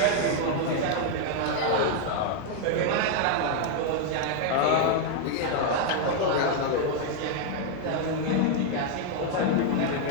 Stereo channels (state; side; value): different; both; correlation 0.00